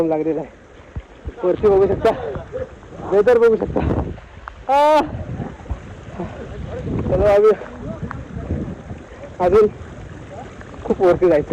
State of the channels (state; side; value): identical; both; correlation 1.00